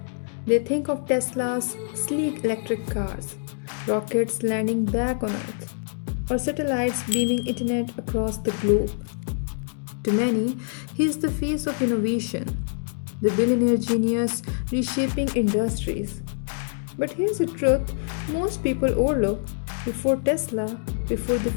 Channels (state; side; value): silent; right; digital silence